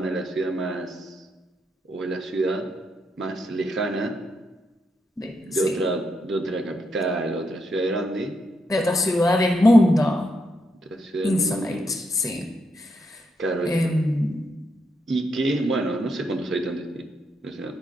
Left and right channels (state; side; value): normal; both; correlation 0.80